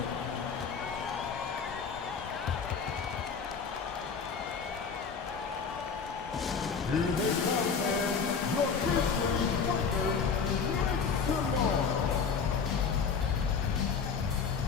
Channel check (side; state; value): right; quieter; 5.8 dB